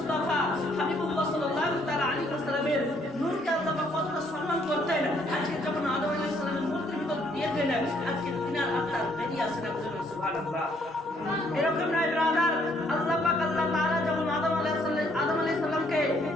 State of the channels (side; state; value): both; normal; correlation 0.67